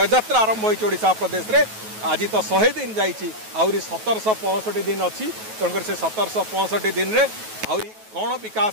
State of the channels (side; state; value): left; late; 9.3 ms